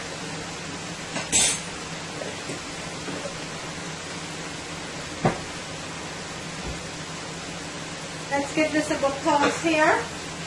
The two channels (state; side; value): identical; both; correlation 1.00